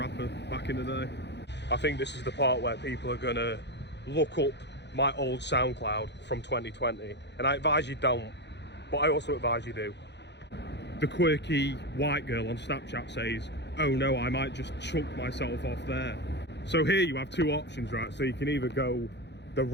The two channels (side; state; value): right; late; 0.50 ms